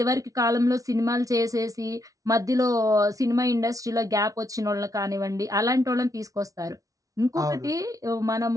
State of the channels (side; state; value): left; late; 0.17 ms